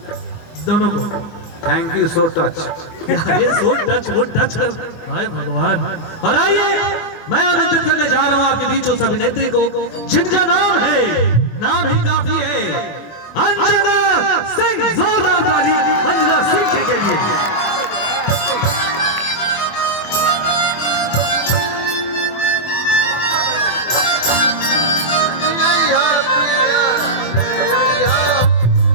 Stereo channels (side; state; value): right; late; 24 ms